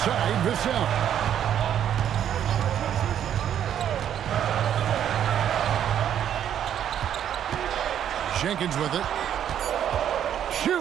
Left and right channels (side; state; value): left; quieter; 9.9 dB